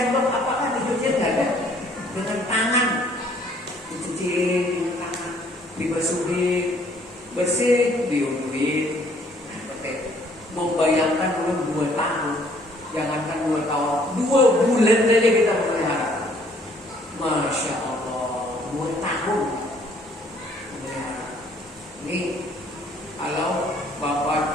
apakah dicuciin? Nggak ada. Dengan tangan, dicuciin dengan tangan, dibasuhin, bersih, diuduin. Membayangkan dulu 2 tahun, jangankan 2 tahun, 2 bulan saja kita melihara. Masya Allah, 2 tahun melihara. Ini kalau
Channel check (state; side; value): normal; both; correlation 0.61